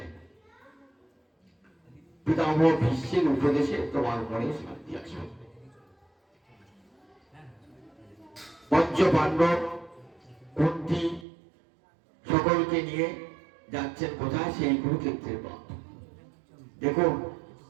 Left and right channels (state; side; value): drops out; left; at 11.2 s